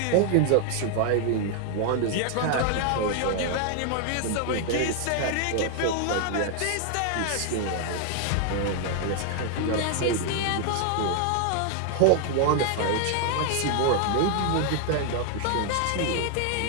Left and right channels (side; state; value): both; different; correlation 0.00